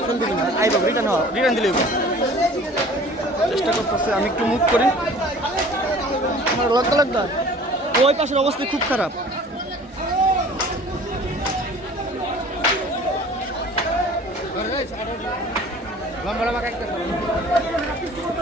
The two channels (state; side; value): normal; both; correlation 0.47